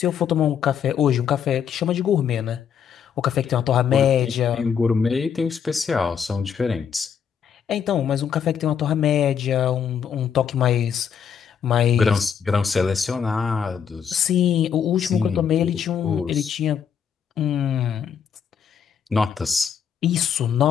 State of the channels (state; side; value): quieter; right; 7.7 dB